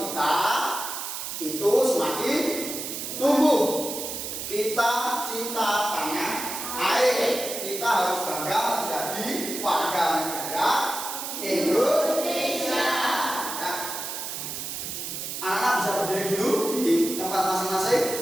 kita itu semakin tumbuh. Kita cinta tanah air. Kita harus bangga menjadi warga negara Indonesia. Ya. Anak-anak bisa berdiri dulu di tempat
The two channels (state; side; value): noise; right; hiss, 6 dB below the sound